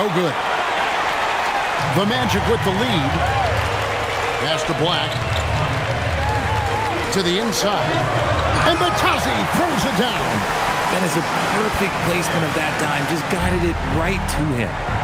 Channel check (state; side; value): identical; both; correlation 1.00